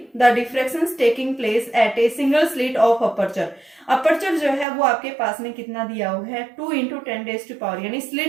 the diffractions taking place at a single slit of aperture. Aperture जो है वो आपके पास में कितना दिया हुआ है 2 × 10⁻, यानी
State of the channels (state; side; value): drops out; left; at 4.7 s